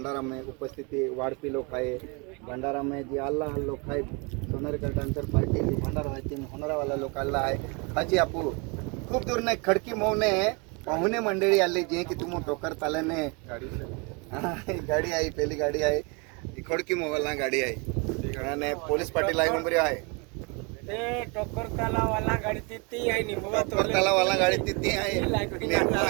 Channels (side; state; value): left; quieter; 30.4 dB